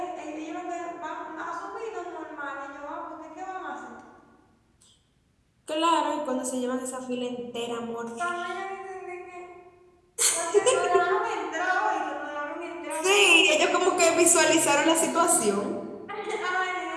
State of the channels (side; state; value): both; identical; correlation 1.00